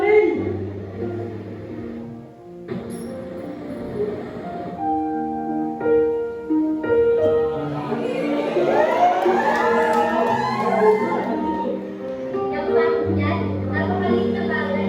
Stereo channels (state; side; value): identical; both; correlation 1.00